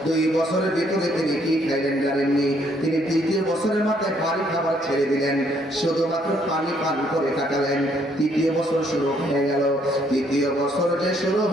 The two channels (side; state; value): both; normal; correlation 0.68